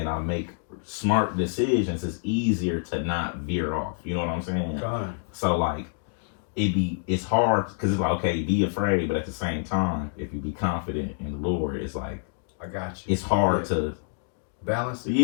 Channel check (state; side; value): silent; right; digital silence